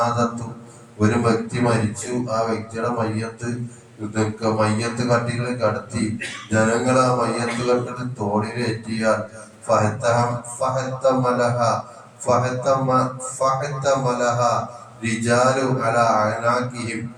ഒരു വ്യക്തി മരിച്ചു, ആ വ്യക്തിയുടെ മയ്യത്ത് കട്ടികളിൽ കടത്തി ജനങ്ങൾ ആ മയ്യത്ത് കട്ടിൽ തോളിലേറ്റിയാൽ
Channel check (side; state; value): both; identical; correlation 1.00